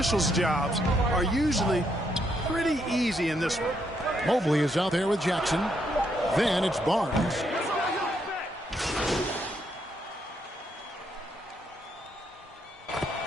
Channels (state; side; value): normal; both; correlation 0.76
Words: jobs are usually pretty easy in this one. Mobley is out there with Jackson. Then it's Barnes.